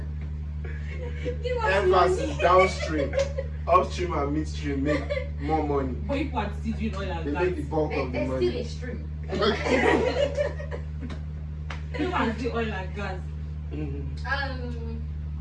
Give us Emphasis money. downstream. Upstream and midstream make more money. But you are still doing oil They and make the gas. bulk of the There's still money. a stream. You are still oil and gas. Mhm.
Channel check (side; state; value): both; identical; correlation 1.00